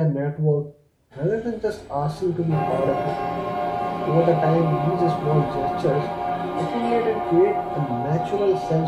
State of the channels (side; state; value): both; identical; correlation 1.00